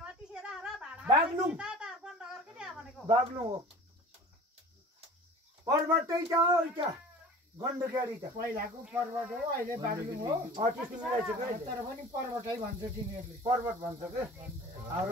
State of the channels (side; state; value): both; normal; correlation 0.41